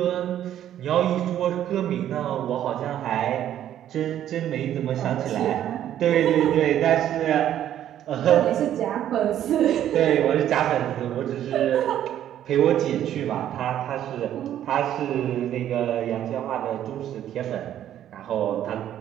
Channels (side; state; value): left; quieter; 11.2 dB